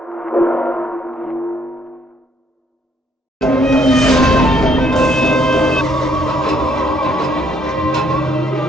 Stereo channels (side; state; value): both; normal; correlation 0.68